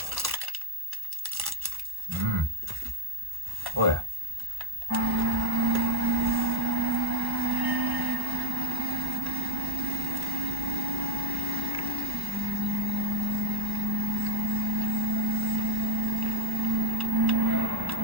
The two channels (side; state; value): left; late; 1.1 ms